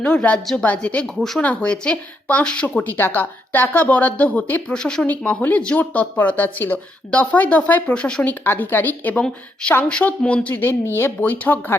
রাজ্য বাজেটে ঘোষণা হয়েছে 500 কোটি টাকা বরাদ্দ হতে প্রশাসনিক মহলে জোর তৎপরতা ছিল। দফায় দফায় প্রশাসনিক আধিকারিক এবং সাংসদ মন্ত্রীদের নিয়ে বৈঠক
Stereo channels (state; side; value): normal; both; correlation 0.78